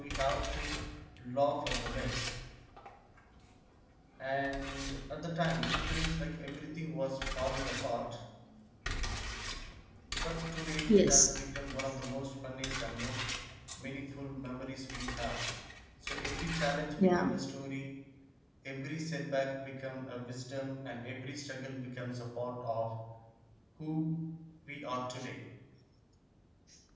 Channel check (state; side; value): identical; both; correlation 1.00